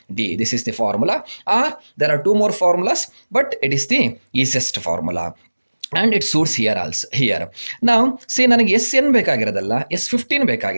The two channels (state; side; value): inverted; both; correlation -1.00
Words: d. This is the formula. Or there are two more formulas, but it is the easiest formula. And it suits here also. Here now see ನನಗೆ SN ಬೇಕಾಗಿರೋದಲ್ಲ, S15